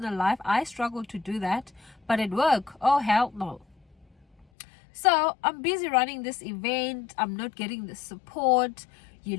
life. I struggle to do that, but at work, oh hell no. So I'm busy running this event. I'm not getting the support.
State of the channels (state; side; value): drops out; right; at 4.5 s